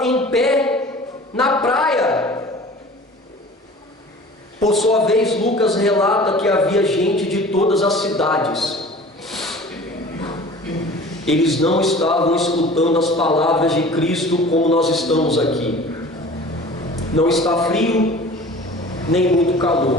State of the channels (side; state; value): both; normal; correlation 0.43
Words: em pé na praia. Por sua vez, Lucas relata que havia gente de todas as cidades. Eles não estavam escutando as palavras de Cristo como nós estamos aqui. Não está frio, nem muito